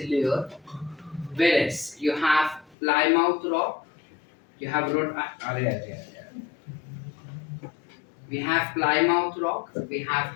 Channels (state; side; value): drops out; right; at 2.8 s